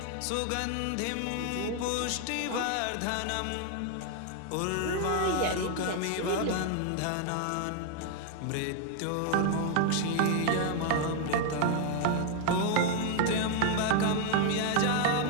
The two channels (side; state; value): both; different; correlation 0.01